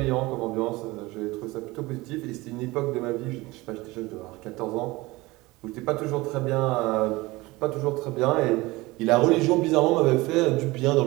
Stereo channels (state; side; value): quieter; left; 21.2 dB